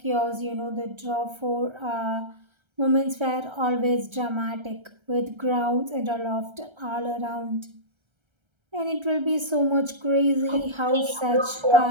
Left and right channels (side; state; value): left; late; 1.3 ms